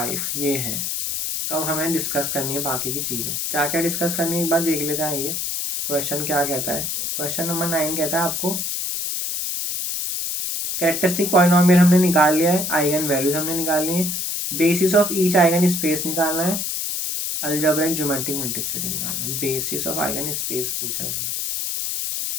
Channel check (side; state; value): left; noise; hiss, 2 dB below the sound